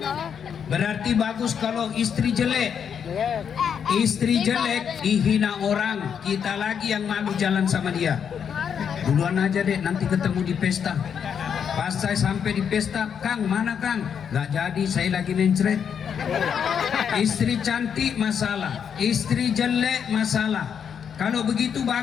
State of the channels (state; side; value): quieter; right; 7.6 dB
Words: Berarti bagus kalau istri jelek. Istri jelek dihina orang, kita lagi yang malu jalan sama dia. Duluan aja deh, nanti ketemu di pesta. Pas saya sampai di pesta, Kang mana Kang? Gak jadi, saya lagi mencret. Istri cantik masalah, istri jelek masalah. Kalau begitu